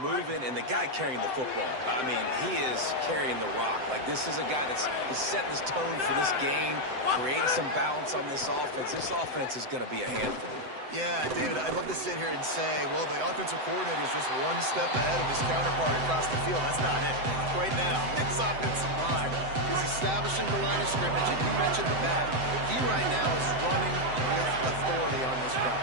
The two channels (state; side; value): late; left; 7.8 ms